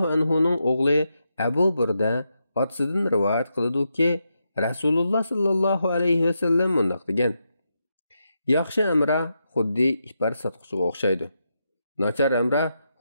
anhu'nun oğlu Abu Burda atasidan rivoyat qiladi ki, Rasululloh sallallohu alayhi ve sellem mundaq degan: Yaxshi amra xuddi ipar satquchiga o'xshaydi. Nachar amra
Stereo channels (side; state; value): both; inverted; correlation -0.84